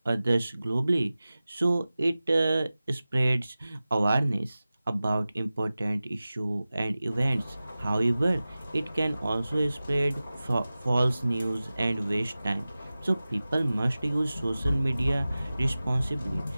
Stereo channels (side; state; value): both; inverted; correlation -0.97